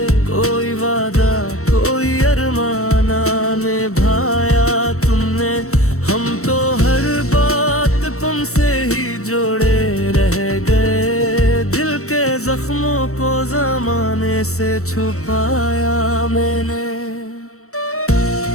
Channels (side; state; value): right; late; 0.64 ms